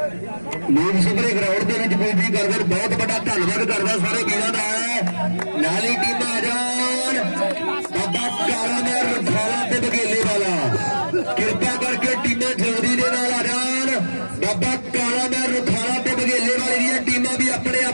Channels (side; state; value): both; inverted; correlation -1.00